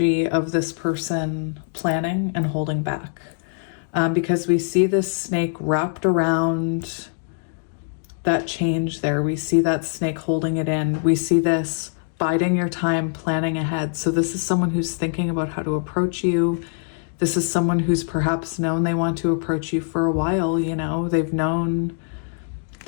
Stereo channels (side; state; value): right; silent; digital silence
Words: of this person planning and holding back, because we see this snake wrapped around that change there. We see that snake holding it in. We see this biding your time, planning ahead. So this is someone who's thinking about how to approach you. This is someone who's perhaps known they want to approach you for a while. You know, they've known